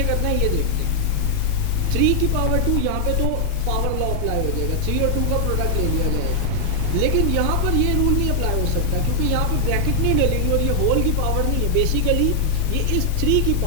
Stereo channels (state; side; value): different; both; correlation 0.00